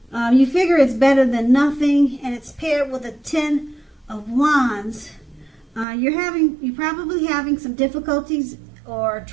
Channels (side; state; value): left; drops out; at 5.9 s